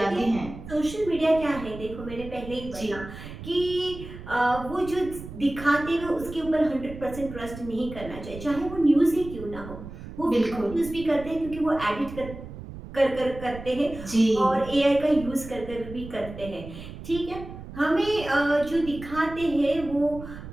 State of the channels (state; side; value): noise; right; rumble, 13 dB below the sound